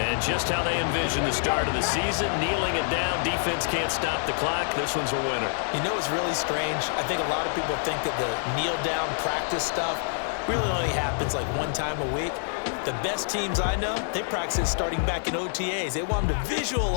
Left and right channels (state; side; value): silent; right; 60 dB below the other